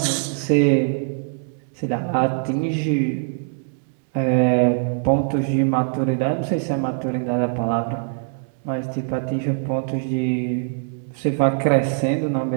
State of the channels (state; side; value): silent; left; digital silence